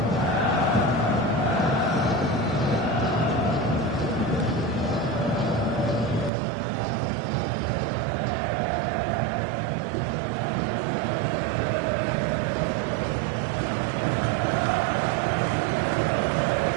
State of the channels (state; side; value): drops out; left; at 6.3 s